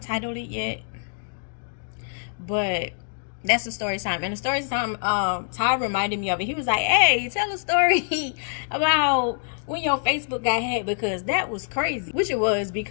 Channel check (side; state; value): right; silent; digital silence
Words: to title it yet, but that's the story time. And the story time, Ty reminded me of it. He was like, hey, tell a story about when your Facebook got hacked, because that was crazy. Which it was,